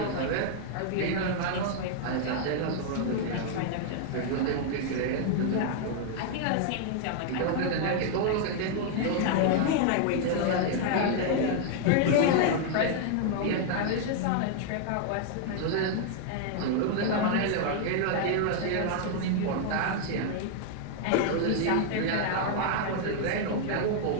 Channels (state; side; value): different; both; correlation 0.00